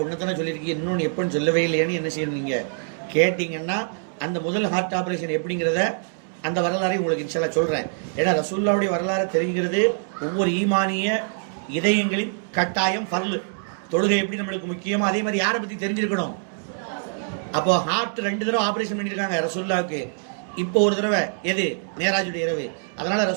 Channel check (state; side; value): silent; left; 62 dB below the other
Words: 1 தானே சொல்லியிருக்கீங்க, இன்னொன்று எப்பன்னு சொல்லவே இல்லையான்னு என்ன செய்யணும் நீங்க கேட்டீங்கன்னா, அந்த முதல் ஹார்ட் ஆபரேஷன் எப்படிங்கிறத அந்த வரலாறை உங்களுக்கு இன்ஷா அல்லாஹ் சொல்றேன். ஏன்னா ரசூலுல்லாஹ்வுடைய வரலாறு தெரிகிறது ஒவ்வொரு ஈமானிய இதயங்களின் கட்டாயம் ஃபர்லு. தொழுகை எப்படி நம்மளுக்கு முக்கியமோ அதே மாதிரி யாரை பத்தி தெரிஞ்சிருக்கணும். அப்போ ஹார்ட் 2 தடவை ஆபரேஷன் பண்ணியிருக்காங்க ரசூலுல்லாஹ்வுக்கு. இப்போ ஒரு தடவை எது? மேராஜுடைய இரவு. அதனால